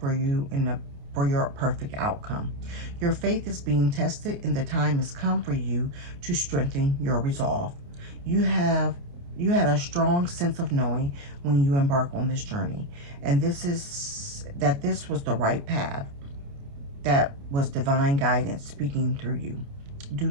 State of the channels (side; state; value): left; late; 29 ms